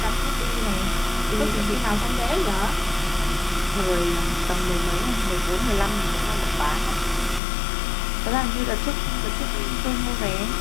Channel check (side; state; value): right; drops out; at 7.4 s